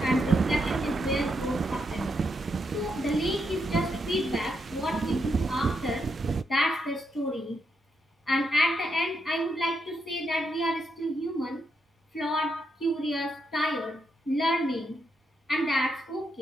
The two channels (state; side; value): normal; both; correlation 0.80